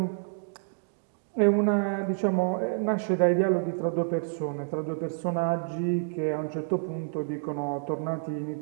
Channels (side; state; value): left; silent; digital silence